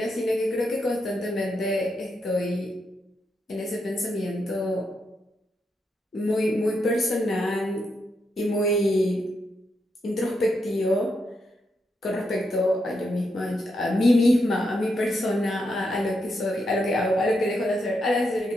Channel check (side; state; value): both; normal; correlation 0.82